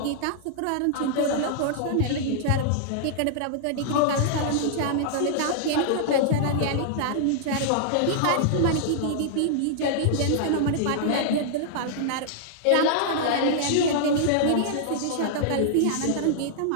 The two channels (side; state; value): both; different; correlation -0.01